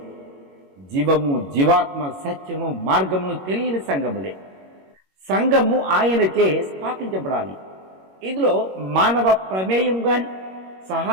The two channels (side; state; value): left; late; 21 ms